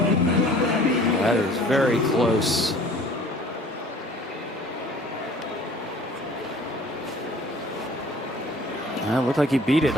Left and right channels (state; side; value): normal; both; correlation 0.50